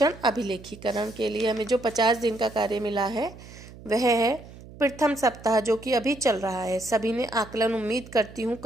अभिलेखीकरण के लिए हमें जो 50 दिन का कार्य मिला है वह है प्रथम सप्ताह, जो कि अभी चल रहा है। सभी ने आकलन उम्मीद करती हूँ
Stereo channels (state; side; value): noise; right; hum, 18 dB below the sound